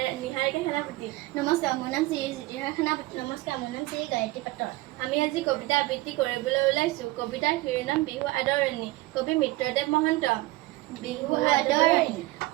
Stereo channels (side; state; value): left; quieter; 19.5 dB